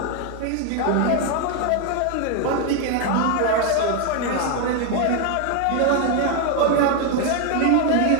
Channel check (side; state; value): both; different; correlation 0.01